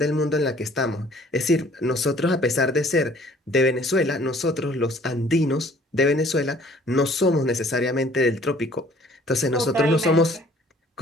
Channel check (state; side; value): normal; both; correlation 0.55